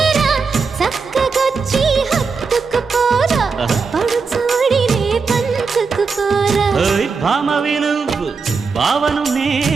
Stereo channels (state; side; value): quieter; left; 5.0 dB